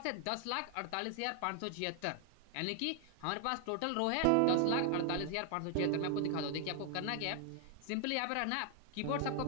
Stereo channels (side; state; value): both; different; correlation 0.00